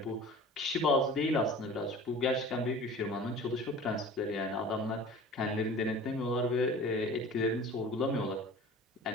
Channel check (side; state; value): both; normal; correlation 0.41